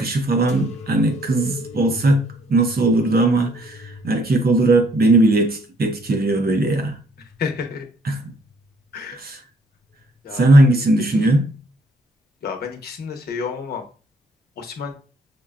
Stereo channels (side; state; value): both; normal; correlation 0.65